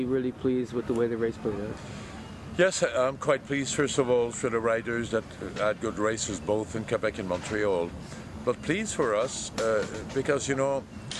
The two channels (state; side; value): identical; both; correlation 1.00